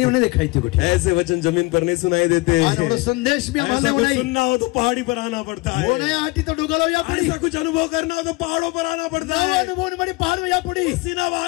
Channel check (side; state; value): right; quieter; 24.0 dB